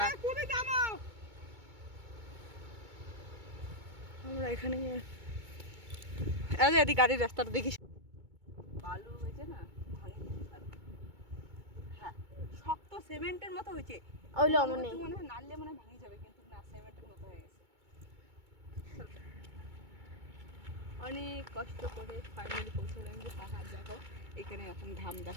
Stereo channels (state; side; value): late; left; 2.2 ms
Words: এখানে এদিকে গাড়ির রাস্তাটা দেখিস, বালু হয়েছে না, হ্যাঁ শক্ত সিমেন্টের মতো হয়েছে। মনে হয় নাড়লে মনে হয় ভাঙে যাবে, কিন্তু না, সিমেন্টের মতো হয়ে গেছে। অনেক কষ্ট করে ফাইনালি পৌঁছলাম যে পাহাড়। দেখো এখানে এখন ধাম